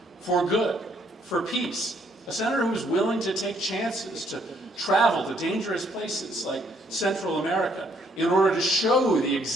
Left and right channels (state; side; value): normal; both; correlation 0.68